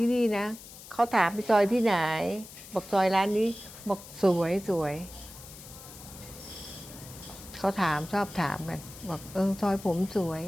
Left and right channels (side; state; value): left; noise; hiss, 16 dB below the sound